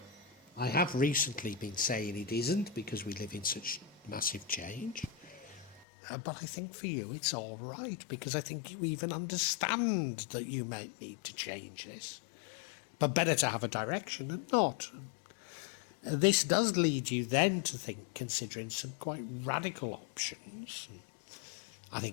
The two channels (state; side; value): drops out; right; at 5.9 s